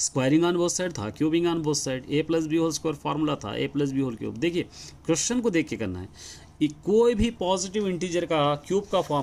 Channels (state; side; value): identical; both; correlation 1.00